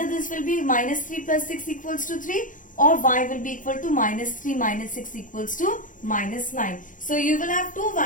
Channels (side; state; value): right; late; 0.38 ms